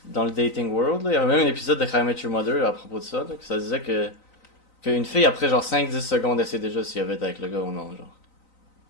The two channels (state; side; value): late; right; 3.9 ms